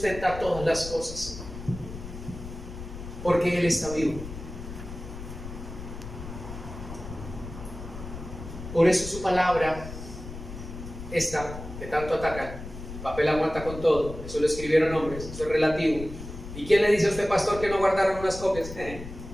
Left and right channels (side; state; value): left; noise; rumble, 11 dB below the sound